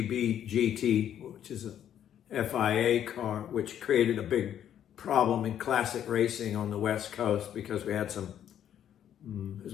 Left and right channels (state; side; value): quieter; right; 10.1 dB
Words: GT, which is a FIA car, which created a big problem in classic racing on the West Coast because we had some, as